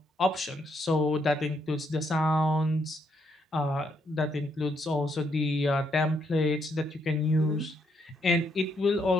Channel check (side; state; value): both; normal; correlation 0.75